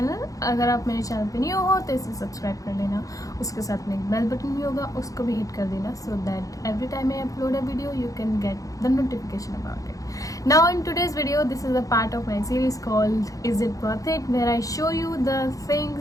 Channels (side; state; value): right; late; 0.17 ms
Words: अगर आप मेरे चैनल पे न्यू हो तो इसे सब्सक्राइब कर लेना। उसके साथ में एक बेल बटन भी होगा, उसको भी हिट कर देना, so that every time I upload a video you can get the notification about it. Now in today's video, this is a part of my series called Is It Worth It, where I show you the things